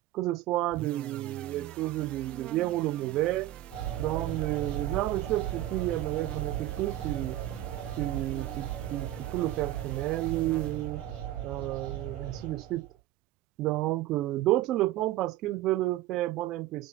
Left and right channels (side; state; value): left; quieter; 14.6 dB